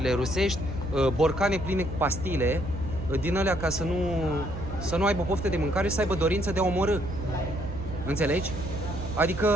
rusești borcane pline cu pastile din alea ca să nu aibă poftă de mâncare și să aibă dorință de a omorâ. Înțelegi?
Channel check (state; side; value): noise; right; hum, 12 dB below the sound